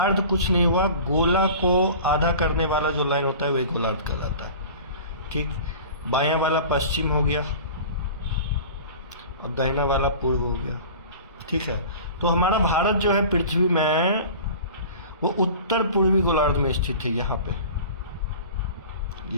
कुछ नहीं हुआ, गोला को आधा करने वाला जो लाइन होता है वही गोलार्ध कहलाता है। ठीक, बायां वाला पश्चिम हो गया और दाहिना वाला पूर्व हो गया। ठीक है, तो हमारा भारत जो है पृथ्वी में वो उत्तर पूर्वी गोलार्ध में स्थित है। यहाँ पे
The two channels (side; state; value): both; inverted; correlation -0.39